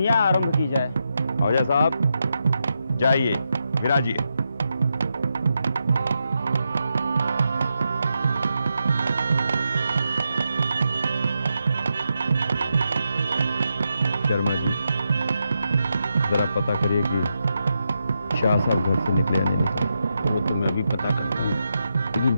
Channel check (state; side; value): inverted; both; correlation -0.85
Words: आरंभ की जाए। आहूजा साहब जाइए, विराजिए। शर्मा जी, जरा पता करिए कि शाह साहब घर से निकले या नहीं निकले। वो तो मैं भी पता करता हूँ, लेकिन